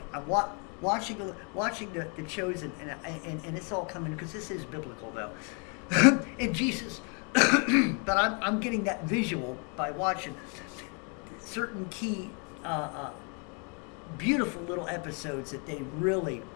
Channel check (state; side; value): quieter; right; 37.0 dB